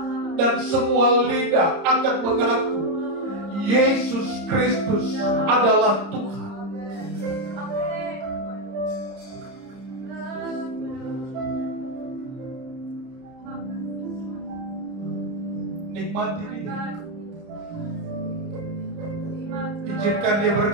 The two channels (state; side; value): late; left; 30 ms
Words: dan semua lidah akan mengaku Yesus Kristus adalah Tuhan. Nikmati ini. Di Izinkan dia